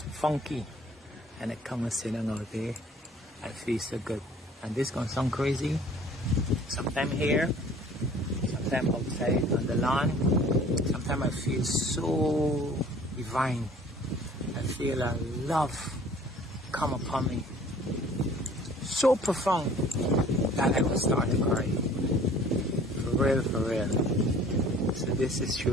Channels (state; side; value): normal; both; correlation 0.51